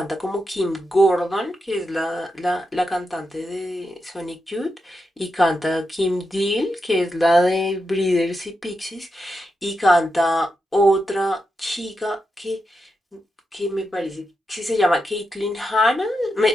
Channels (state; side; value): normal; both; correlation 0.86